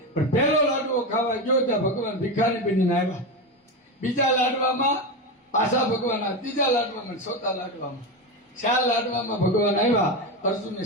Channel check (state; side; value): normal; both; correlation 0.16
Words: પણ પહેલો લાડવો ખાવા ગયો ત્યાં ભગવાન ભિખારી બનીને આવ્યા બીજા લાડવામાં પાછા ભગવાન ત્રીજા લાડવામાં ચોથા લાડવામાં 4 લાડવામાં ભગવાન આવ્યા અર્જુનને